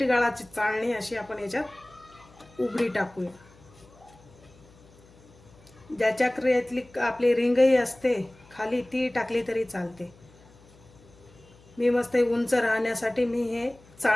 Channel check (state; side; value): noise; left; hum, 26 dB below the sound